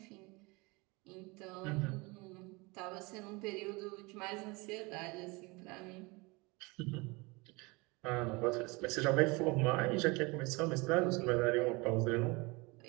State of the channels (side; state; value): left; quieter; 25.9 dB